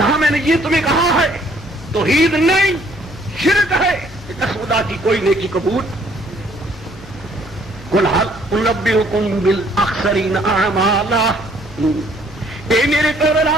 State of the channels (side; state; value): both; normal; correlation 0.63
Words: میں نے یہ تمہیں کہا ہے توحید نہیں شرک ہے, خدا کی کوئی نیکی قبول. قل هل انبئکم بالاخسرین اعمالا, اے میرے